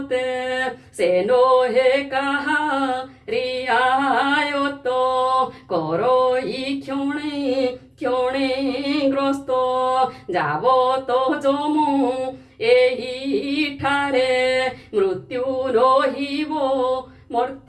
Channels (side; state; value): both; identical; correlation 1.00